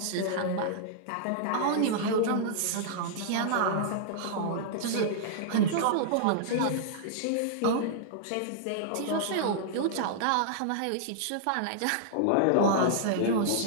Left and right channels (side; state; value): both; different; correlation -0.01